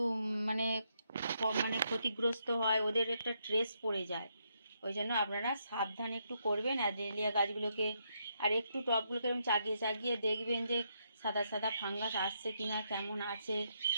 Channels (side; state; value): both; inverted; correlation -0.78